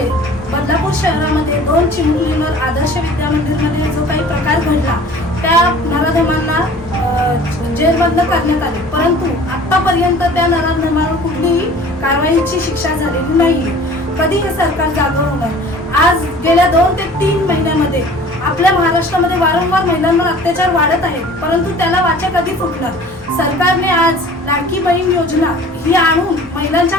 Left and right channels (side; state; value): both; normal; correlation 0.46